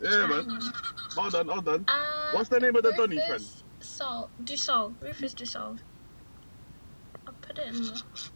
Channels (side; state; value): both; inverted; correlation -1.00